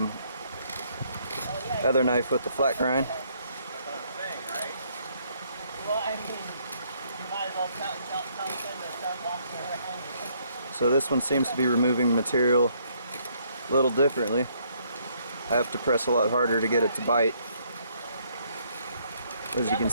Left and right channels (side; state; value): both; inverted; correlation -0.68